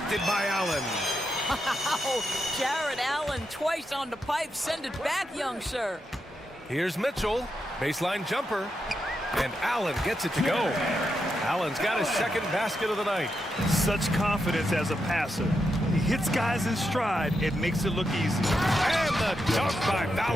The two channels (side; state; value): both; normal; correlation 0.85